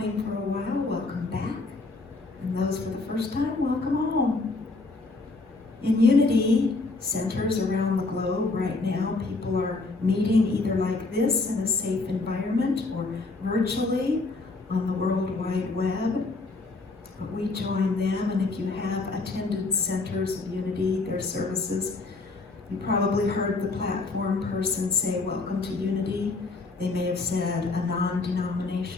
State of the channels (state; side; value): quieter; right; 3.6 dB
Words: for a while, welcome back. And those for the first time, welcome home. In Unity centers around the globe right now, people are meeting either like this in a safe environment or virtually on the World Wide Web. But we join them, and if you have attended centers of Unity, their services, you probably heard the platform person say, welcome to Unity. They may have said a